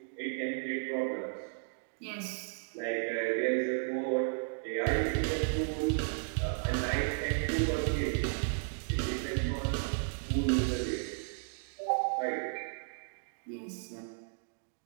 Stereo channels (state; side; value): silent; left; digital silence